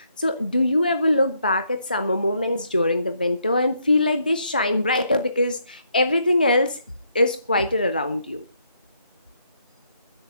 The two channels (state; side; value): inverted; both; correlation -0.74